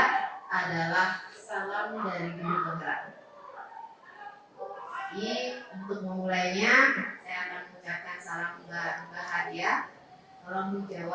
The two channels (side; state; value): both; identical; correlation 1.00